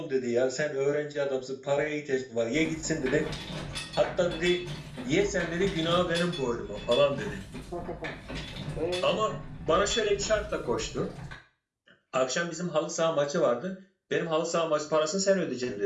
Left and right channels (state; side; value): identical; both; correlation 1.00